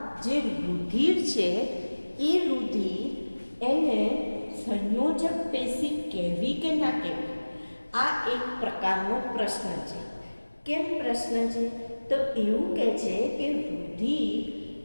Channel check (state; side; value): inverted; both; correlation -1.00